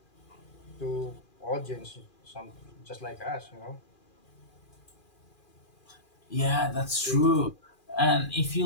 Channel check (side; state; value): right; late; 2.4 ms